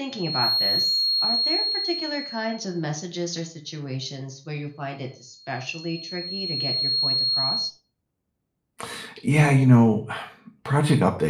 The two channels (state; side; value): identical; both; correlation 1.00